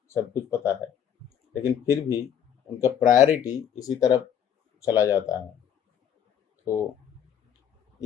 सब कुछ पता है, लेकिन फिर भी उनका प्रायोरिटी इसी तरफ चला जाता है। तो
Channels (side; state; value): right; quieter; 9.1 dB